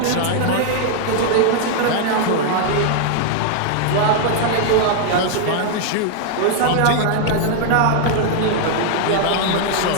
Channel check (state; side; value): different; both; correlation 0.00